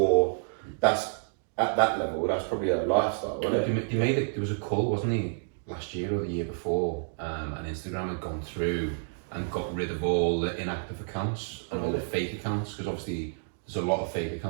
that's at that level. That's probably a lifestyle, isn't it? They made it. There was a call, wasn't he, last year or the year before, and Instagram had gone through and got rid of all the inactive accounts and all the fake accounts, because obviously there's a lot of fake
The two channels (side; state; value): left; silent; digital silence